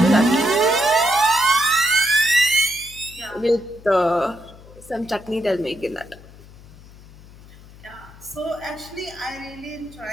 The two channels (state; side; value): noise; left; hum, 21 dB below the sound